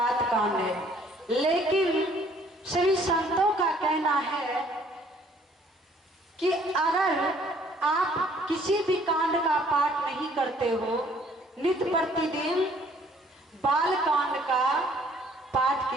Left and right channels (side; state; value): both; normal; correlation 0.60